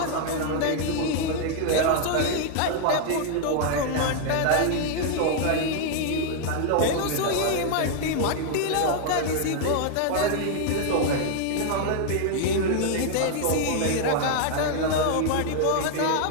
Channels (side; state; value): both; different; correlation 0.00